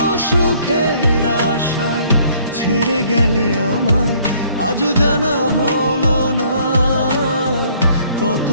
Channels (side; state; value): both; inverted; correlation -0.61